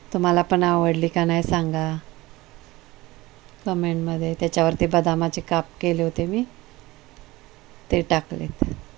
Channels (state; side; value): quieter; left; 19.7 dB